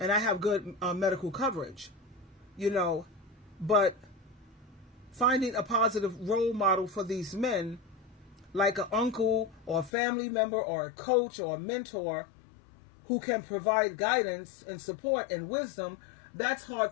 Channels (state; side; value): drops out; right; at 9.9 s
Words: And I have good medical coverage, you know. But finding a positive role model for these men, like an uncle or a family member or a coach or a mentor who can provide guidance and support and wisdom, that's hard